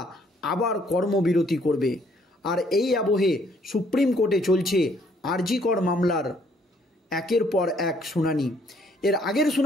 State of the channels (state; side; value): normal; both; correlation 0.65